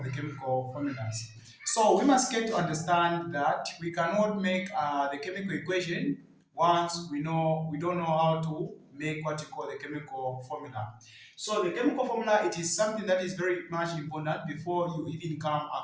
the chemical formulas. So we must get to understand that we cannot make the chemical equation once we don't know how to make what you call the chemical formula. So the chemical formula, it is something that is very much important before you even come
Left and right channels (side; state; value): both; identical; correlation 1.00